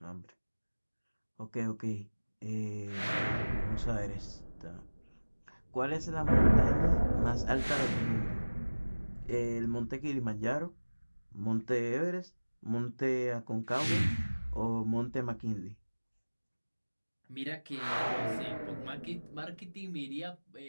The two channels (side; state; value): both; inverted; correlation -1.00